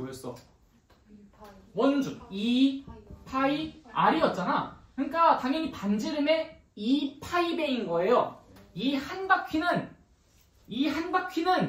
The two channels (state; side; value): identical; both; correlation 1.00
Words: 원주 2파이 R이었잖아. 그러니까 당연히 반지름의 2파이배인 거예요. 이 한 바퀴는